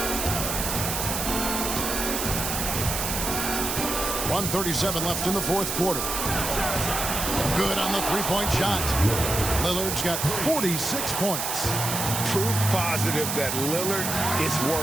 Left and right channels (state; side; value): noise; right; hiss, 2 dB below the sound